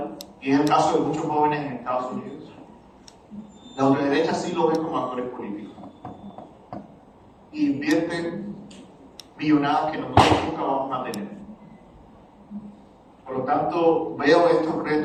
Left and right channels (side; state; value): both; identical; correlation 1.00